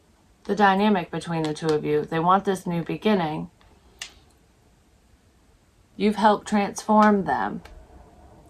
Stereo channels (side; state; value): both; identical; correlation 1.00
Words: the dynamic between the two of you. They want this new beginning. You've helped transform them.